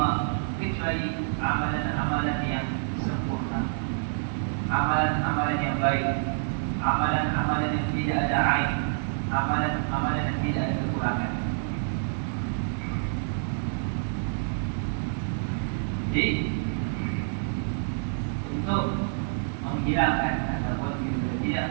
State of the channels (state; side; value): silent; left; 60 dB below the other